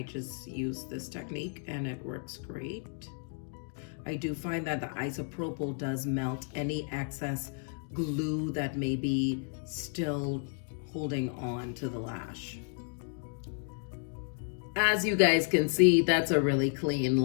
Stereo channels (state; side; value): silent; right; 56 dB below the other